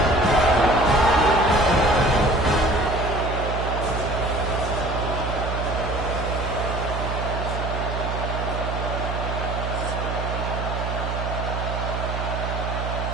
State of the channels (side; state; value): right; noise; hum, 3 dB below the sound